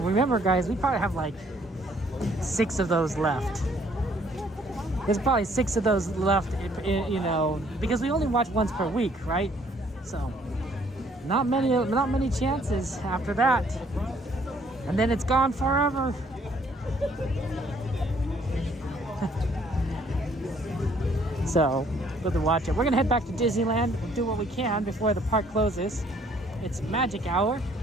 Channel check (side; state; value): both; normal; correlation 0.63